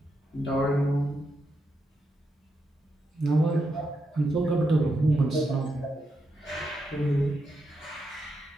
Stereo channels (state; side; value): normal; both; correlation 0.83